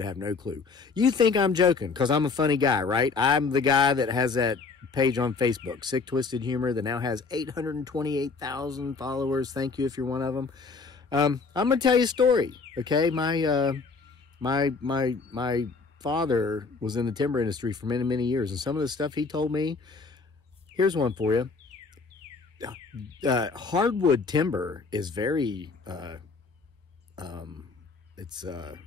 have no clue. You think I'm joking because I'm a funny guy, right? I'm the guy that has that page on Facebook, Sick Twisted Humor, that now has 828,000 followers. Thank you if you're one of them. I'm going to tell you a story, okay? My father was in the timber industry for many, many years, and some of the stuff he told me, here's one for you. Hardwood timber is very, it's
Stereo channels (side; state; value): right; quieter; 4.6 dB